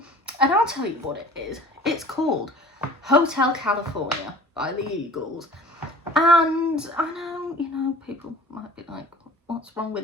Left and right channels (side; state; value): both; normal; correlation 0.45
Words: and I'll tell you what it is. It's called Hotel California by the Eagles. And I know, you know, people might be like, what's wrong with